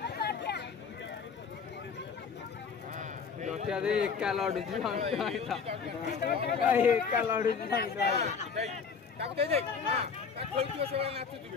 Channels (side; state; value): right; quieter; 5.8 dB